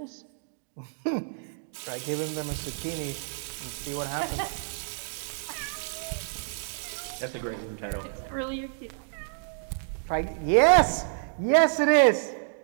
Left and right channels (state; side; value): silent; left; 59 dB below the other